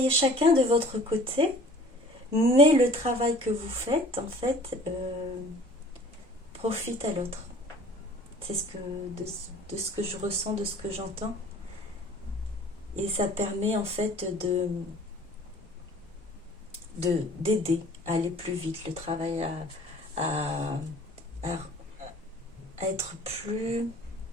chacun de votre côté, mais le travail que vous faites en fait profite à l'autre. C'est de ce que je ressens, de ce que j'entends, et ça permet en fait d'aider à aller plus vite, le travail à être plus,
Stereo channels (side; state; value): both; normal; correlation 0.48